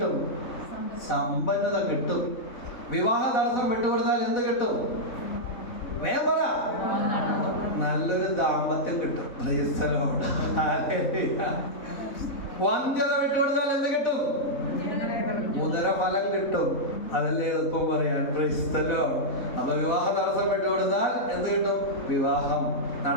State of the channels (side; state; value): right; late; 3.6 ms